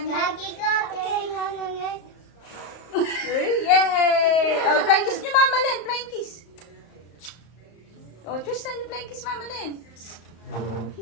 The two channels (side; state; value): right; late; 34 ms